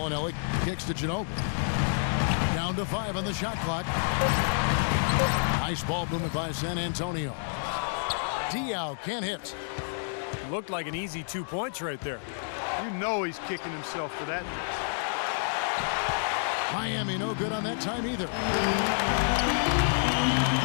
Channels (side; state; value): right; silent; digital silence